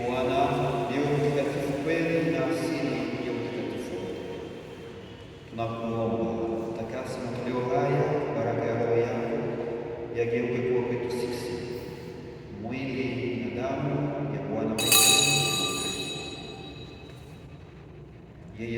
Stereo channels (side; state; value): both; identical; correlation 1.00